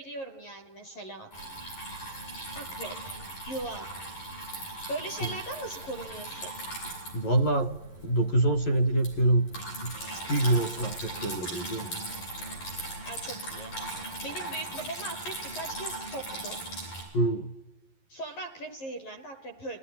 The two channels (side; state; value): right; late; 11 ms